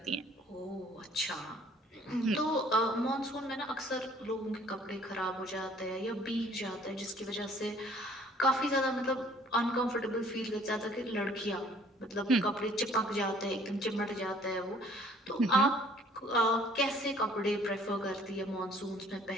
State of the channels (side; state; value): both; normal; correlation 0.57